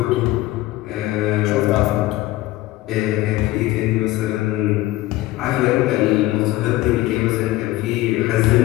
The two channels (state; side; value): quieter; right; 17.1 dB